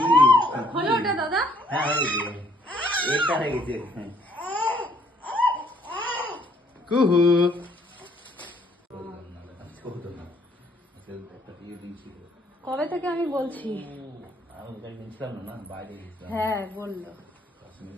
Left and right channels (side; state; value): both; normal; correlation 0.65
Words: হলো ওটা দাদা? হ্যাঁ এটা হয়ে গেছে। কুহু কবে থেকে আমি বলছি? হ্যাঁ বললো।